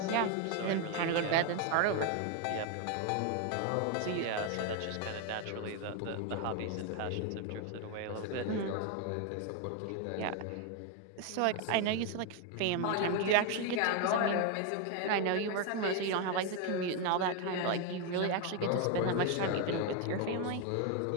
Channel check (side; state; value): both; different; correlation 0.01